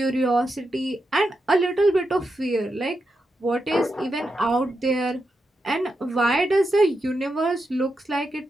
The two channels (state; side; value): normal; both; correlation 0.86